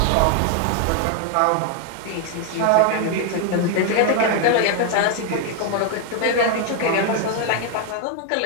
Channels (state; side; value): different; both; correlation 0.00